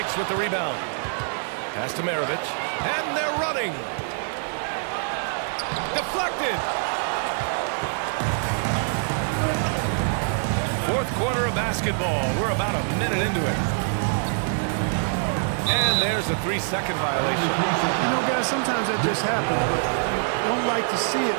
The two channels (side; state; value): left; silent; 59 dB below the other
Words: with the rebound. Pass to Maravich. And they're running. Deflected. Fourth quarter of basketball. We're about a minute into it. And there's a 3-second violation. You know, guys, sometimes that just happens, but you don't like to see it